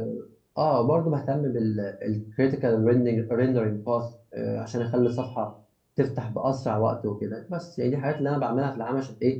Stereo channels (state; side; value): identical; both; correlation 1.00